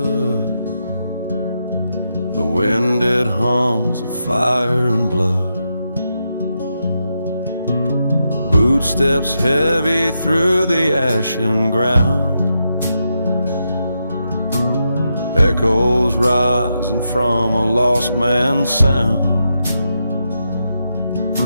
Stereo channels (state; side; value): inverted; both; correlation -0.84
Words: The wind, it hums of fire and blood. Footsteps heavy through the ashen ground. Echoes rising from a lost man's sound.